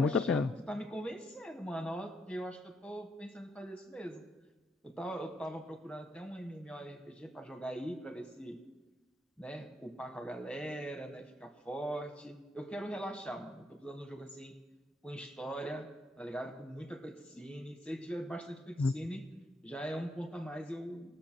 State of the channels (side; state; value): both; normal; correlation 0.76